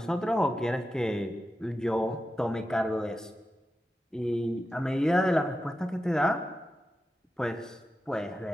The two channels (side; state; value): both; normal; correlation 0.91